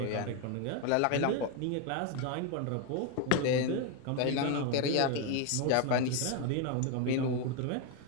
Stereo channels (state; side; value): different; both; correlation 0.01